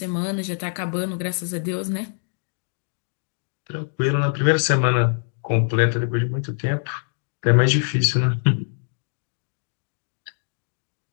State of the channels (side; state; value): right; silent; digital silence